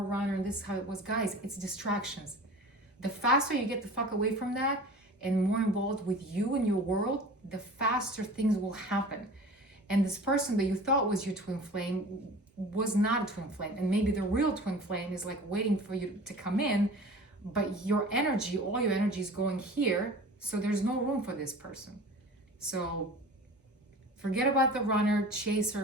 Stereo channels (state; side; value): normal; both; correlation 0.40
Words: runner, and this is how it was. Guys, it's distractions. The faster you get the fuck away from that and more involved with you and your world, the faster things will happen. And this person that you thought was your twin flame was not a twin flame, and maybe the real twin flame is like waiting for you to come in, but your energy, all your energy is going here, so there's no room for this person. So forget about the runner,